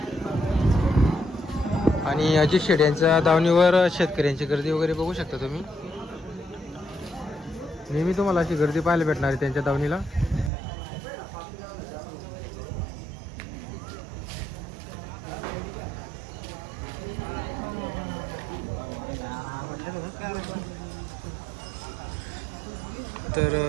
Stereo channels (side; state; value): left; drops out; at 10.5 s